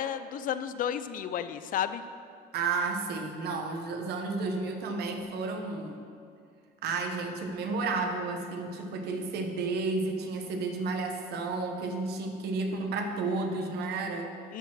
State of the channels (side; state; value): both; normal; correlation 0.31